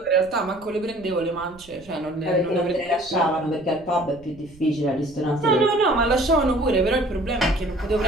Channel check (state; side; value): noise; right; rumble, 24 dB below the sound